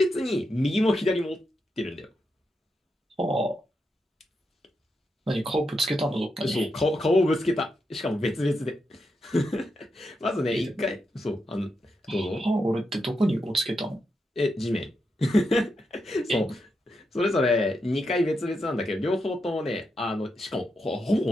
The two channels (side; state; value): both; normal; correlation 0.85